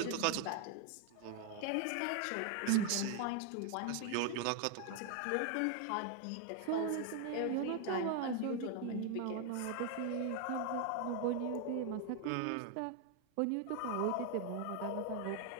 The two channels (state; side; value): different; both; correlation 0.00